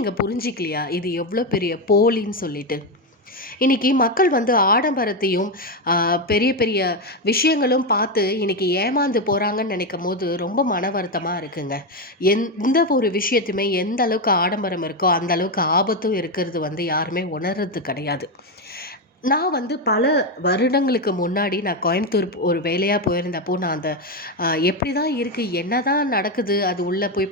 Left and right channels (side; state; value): both; normal; correlation 0.09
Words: புரிஞ்சிக்கலையா இது எவ்வளோ பெரிய போலின்னு சொல்லிட்டு? இன்றைக்கி மக்கள் வந்து ஆடம்பரத்தையும் பெரிய பெரிய விஷயங்களும் பார்த்து இன்றைக்கி ஏமாந்து போகிறாங்கன்னு நினைக்கும் போது ரொம்ப மன வருத்தமாக இருக்குங்க. எந்த ஒரு விஷயத்தையுமே எந்த அளவுக்கு ஆடம்பரம் இருக்கோ அந்த அளவுக்கு ஆபத்தும் இருக்கிறது வந்து யாருமே உணர்றது கிடையாது. நான் வந்து பல வருடங்களுக்கு முன்னாடி நான் கோயம்புத்தூர் ஒரு வேலையாக போயிருந்தப்போ நான் அந்த எப்படி தான் இருக்குது, என்ன தான் நடக்குது, அது உள்ளே போய்